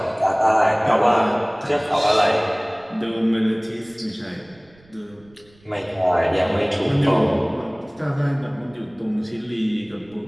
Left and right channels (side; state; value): right; noise; rumble, 29 dB below the sound